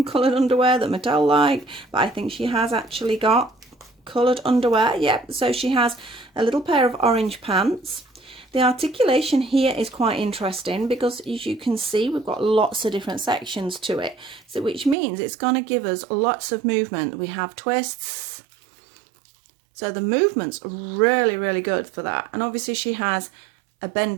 coloured underwear that Mattel like, but I think she has actually got coloured underwear. Yep, so she has a little pair of orange pants. The articulation here is quite interesting because, as you can see, we've got lots of different sections to it, so which means it's going to give us lots of movement. We have twists, so the movement's really, really good for that. And obviously she has a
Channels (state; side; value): drops out; left; at 15.0 s